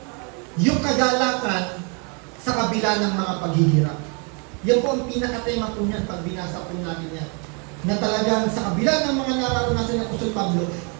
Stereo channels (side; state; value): left; quieter; 35.3 dB